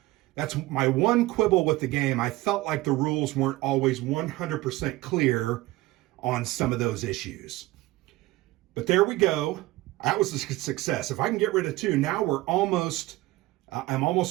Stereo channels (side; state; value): left; quieter; 18.5 dB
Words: that's my one quibble with the game. I felt like the rules weren't always 100% clear on some of those issues. But there we go. That was a success. If I can get rid of 2, now I'm